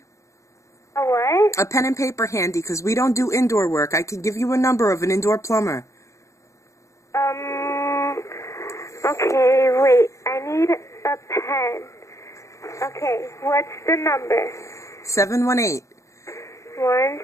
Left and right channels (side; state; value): right; late; 0.15 ms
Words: A what? A pen and paper handy, because we don't do indoor work. I can give you a number of an indoor plumber. Okay, wait. I need a pen. Okay, what's the number? 718.